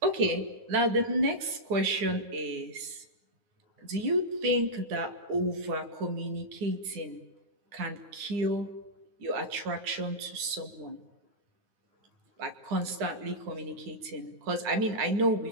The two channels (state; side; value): late; left; 9.5 ms